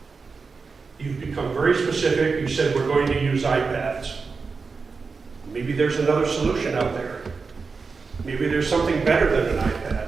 You've become very specific. You said we're going to use iPads. Maybe there's another solution out there. Maybe there's something better than an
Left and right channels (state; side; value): quieter; left; 4.7 dB